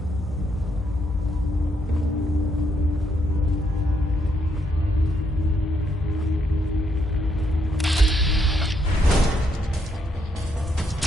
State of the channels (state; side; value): normal; both; correlation 0.75